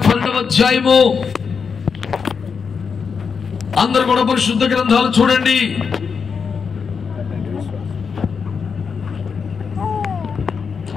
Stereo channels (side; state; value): right; quieter; 5.9 dB